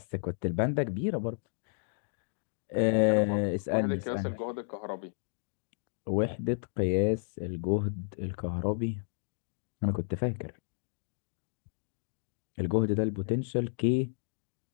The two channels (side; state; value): right; silent; digital silence